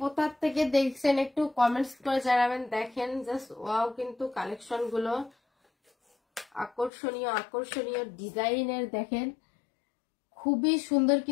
থেকে দেখছেন একটু কমেন্টস করে জানাবেন। দেখেন জাস্ট ওয়াও, কিন্তু কালেকশন গুলো আকর্ষণীয় ডিজাইনের। দেখেন খুবই সুন্দর,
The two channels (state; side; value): drops out; right; at 6.9 s